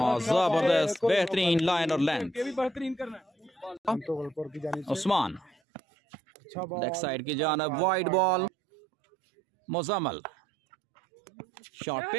जबरदस्त बेहतरीन line और length. Usman leg side की जानब, wide ball Muzammil, short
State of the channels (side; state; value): left; drops out; at 5.6 s